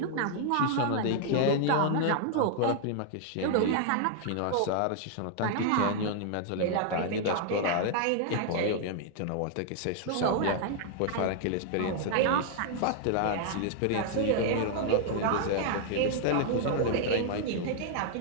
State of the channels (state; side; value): different; both; correlation 0.00